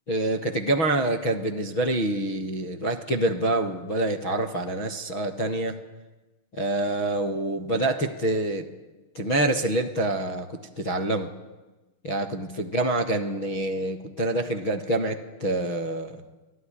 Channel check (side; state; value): right; late; 6.5 ms